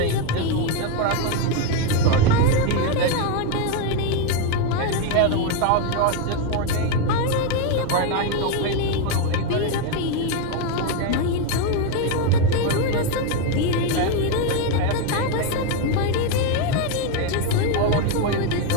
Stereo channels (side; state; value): both; different; correlation 0.02